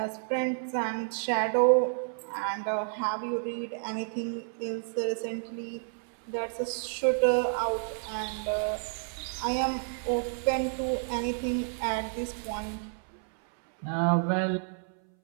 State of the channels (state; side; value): silent; left; 58 dB below the other